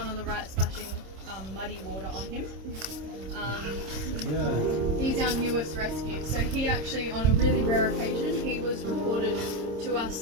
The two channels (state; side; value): late; left; 26 ms